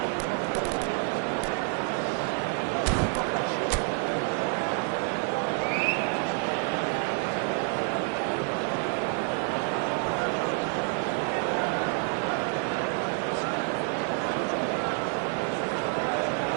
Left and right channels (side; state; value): left; quieter; 39.1 dB